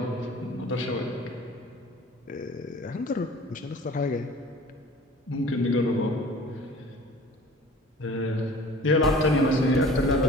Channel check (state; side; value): normal; both; correlation 0.45